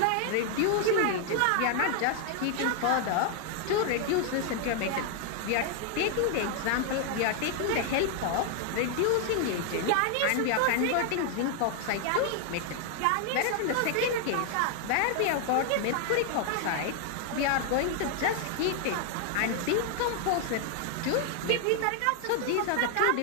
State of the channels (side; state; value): both; different; correlation 0.00